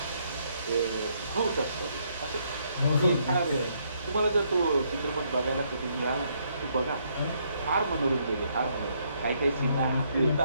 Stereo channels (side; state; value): both; inverted; correlation -0.72